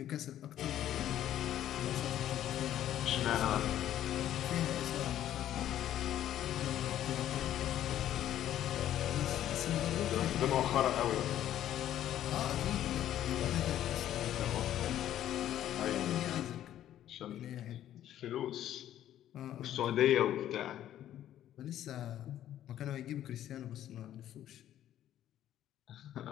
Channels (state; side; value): quieter; right; 11.9 dB